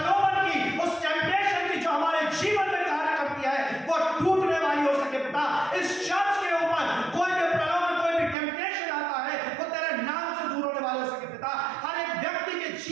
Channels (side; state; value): left; drops out; at 8.3 s